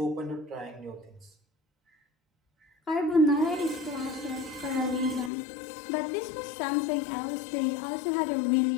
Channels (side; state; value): right; drops out; at 5.3 s